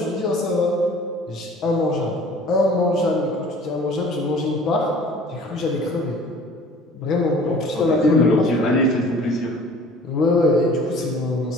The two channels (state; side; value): normal; both; correlation 0.48